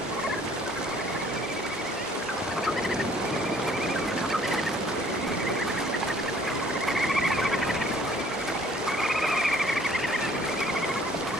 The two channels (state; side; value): normal; both; correlation 0.58